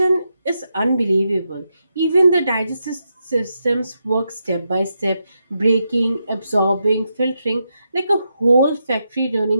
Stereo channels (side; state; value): both; inverted; correlation -0.85